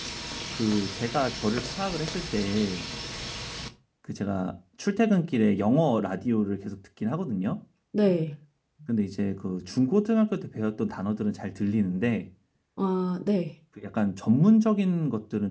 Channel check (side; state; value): both; identical; correlation 1.00